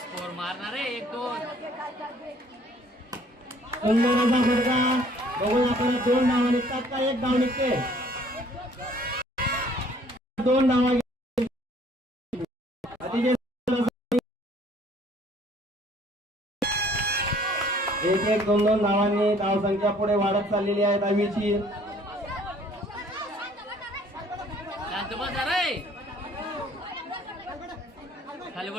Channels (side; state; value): both; normal; correlation 0.58